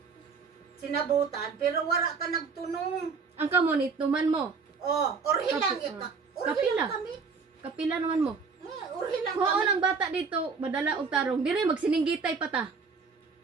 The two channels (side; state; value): left; quieter; 5.1 dB